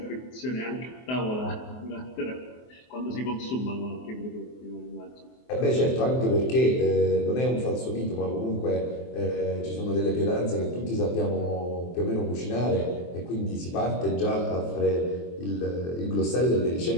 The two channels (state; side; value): late; right; 23 ms